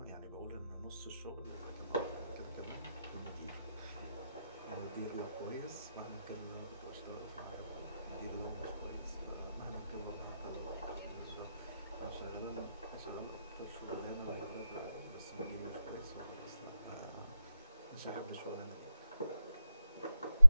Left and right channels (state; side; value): inverted; both; correlation -0.88